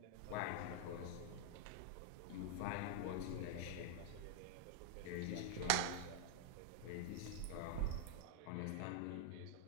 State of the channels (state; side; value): different; both; correlation -0.01